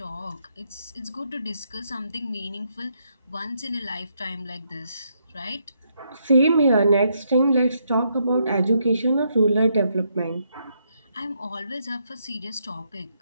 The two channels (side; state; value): both; inverted; correlation -0.77